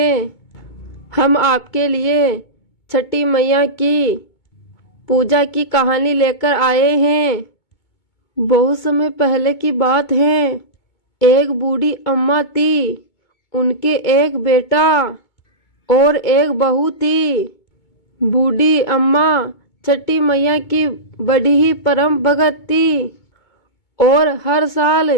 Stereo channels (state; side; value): late; right; 2.2 ms